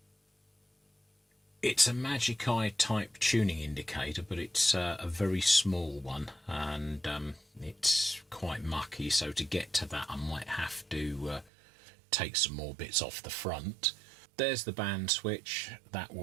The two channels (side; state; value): left; drops out; at 11.5 s